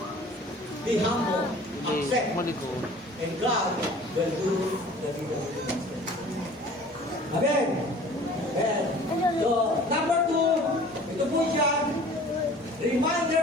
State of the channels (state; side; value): normal; both; correlation 0.47